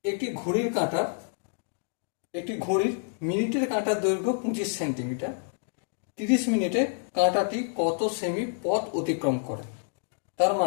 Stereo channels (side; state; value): right; silent; 59 dB below the other